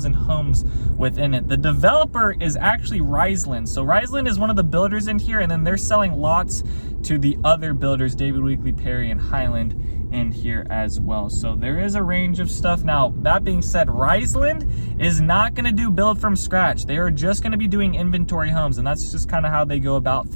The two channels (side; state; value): both; inverted; correlation -1.00